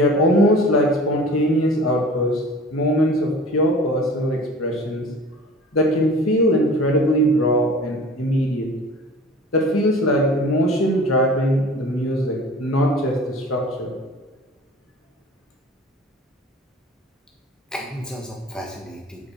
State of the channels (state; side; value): normal; both; correlation 0.43